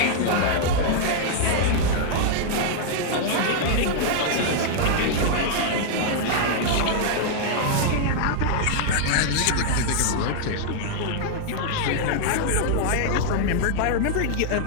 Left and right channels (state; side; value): different; both; correlation -0.01